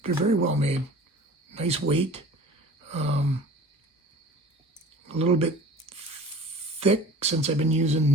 They're very well made. Nice weight. A little bit thick since I've been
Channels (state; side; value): normal; both; correlation 0.43